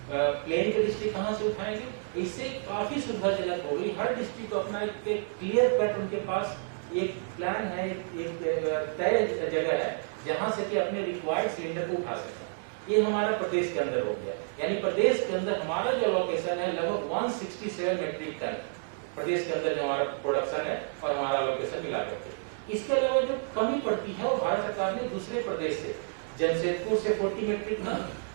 प्लेन के डिस्ट्रिक्ट कहाँ से उठाएंगे, इससे काफ़ी सुविधाजनक हो गई। हर डिस्ट्रिक्ट को अपना एक क्लियर कट उनके पास एक प्लान है, एक तय जगह है जहाँ से कि अपने रिक्वायर्ड सिलेंडर को उठा सकें। ये हमारा प्रदेश के अंदर हो गया, यानी प्रदेश के अंदर हमारा जो अलोकेशन है लगभग 167 मेट्रिक टन प्रदेश के अंदर जो हमारा प्रोडक्शन है और हमारा अलोकेशन मिला करके। इसके अलावा जो कमी पड़ती है वो भारत सरकार ने दूसरे प्रदेश से, जमशेदपुर से 40 मेट्रिक टन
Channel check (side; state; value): left; silent; digital silence